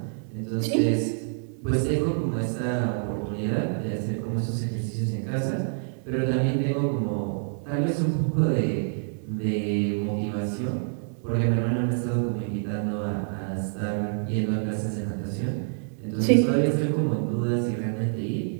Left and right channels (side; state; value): left; silent; digital silence